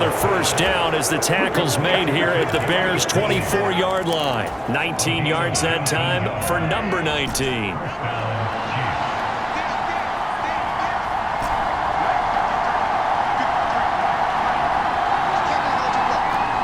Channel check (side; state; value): both; identical; correlation 1.00